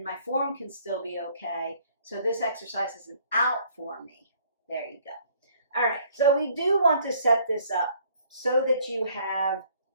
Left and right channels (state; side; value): inverted; both; correlation -0.60